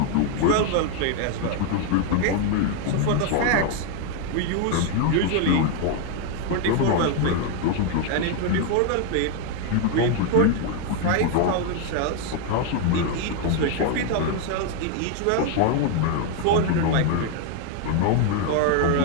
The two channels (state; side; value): different; both; correlation 0.01